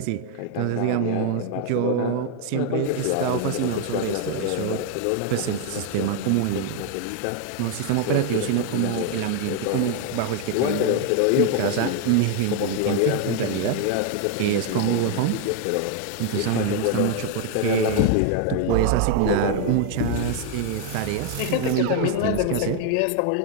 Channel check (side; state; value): both; different; correlation 0.00